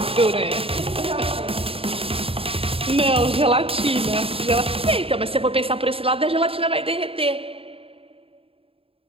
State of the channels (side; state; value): left; late; 0.27 ms